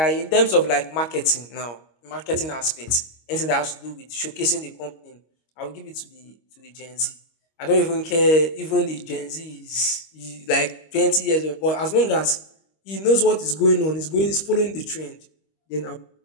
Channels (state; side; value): late; right; 25 ms